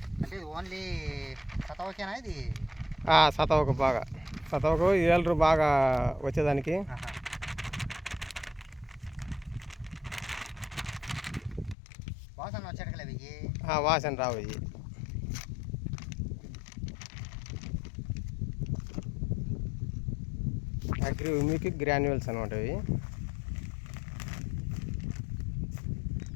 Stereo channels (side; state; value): right; drops out; at 11.8 s